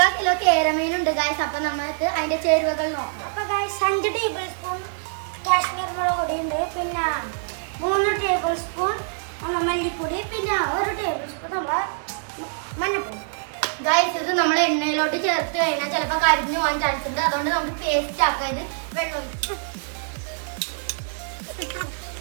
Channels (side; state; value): left; silent; digital silence